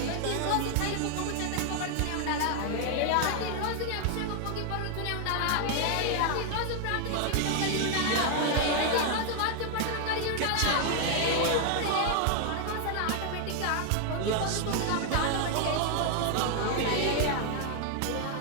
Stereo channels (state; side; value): different; both; correlation 0.00